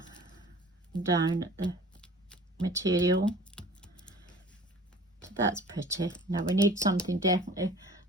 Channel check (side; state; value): both; normal; correlation 0.46